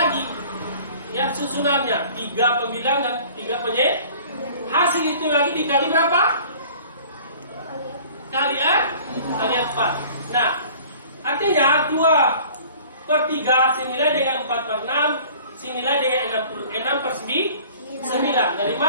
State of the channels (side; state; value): both; inverted; correlation -0.48